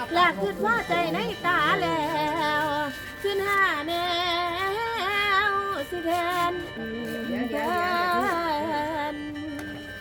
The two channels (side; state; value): both; identical; correlation 1.00